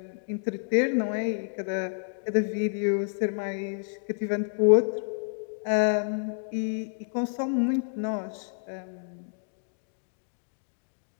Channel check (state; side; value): silent; right; digital silence